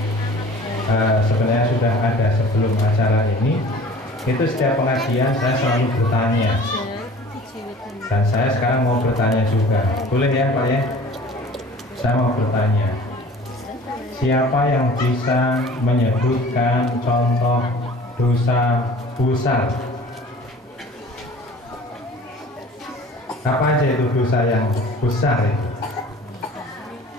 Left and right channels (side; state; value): both; normal; correlation 0.45